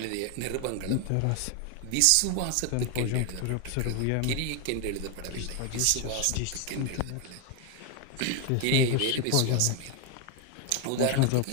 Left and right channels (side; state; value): both; different; correlation 0.01